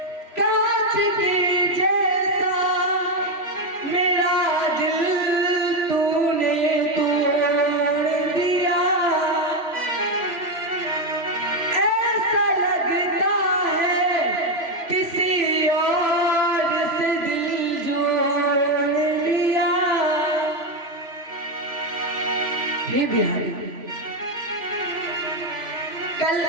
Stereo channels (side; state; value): left; late; 3.0 ms